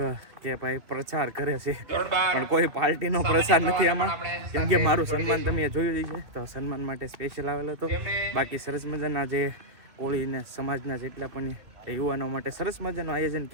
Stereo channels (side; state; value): left; late; 2.5 ms